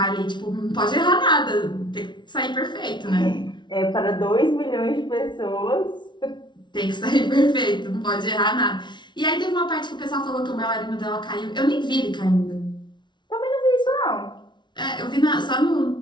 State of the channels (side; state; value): right; late; 0.22 ms